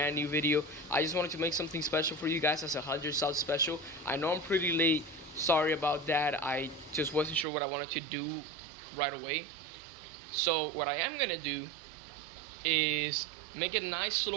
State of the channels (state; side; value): drops out; left; at 7.5 s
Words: new video. I just wanted to make something special for you guys as a 100 sub special. I know I'm pretty late, sorry about that. I just wasn't sure what I wanted to do right away. So what I am gonna do is make a nice